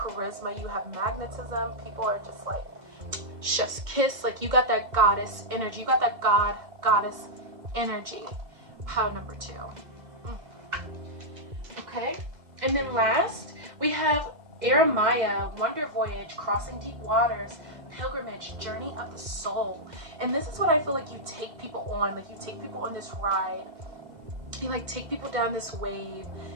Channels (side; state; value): left; late; 2.0 ms